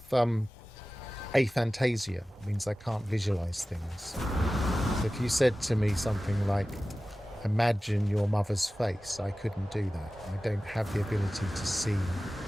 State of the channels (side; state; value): both; normal; correlation 0.96